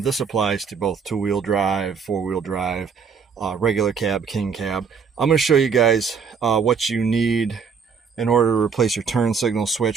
This applies to both two-wheel drive, four-wheel drive, regular cab, king cab. I'm going to show you guys what you need in order to replace your turn signal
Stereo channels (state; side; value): quieter; left; 6.1 dB